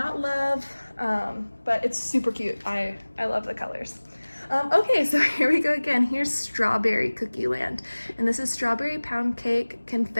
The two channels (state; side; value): inverted; both; correlation -1.00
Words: love, but it's super cute. I love the colors. Okay, so here we go again. Here's Strawberry Cookie Land, and this is strawberry pound cake,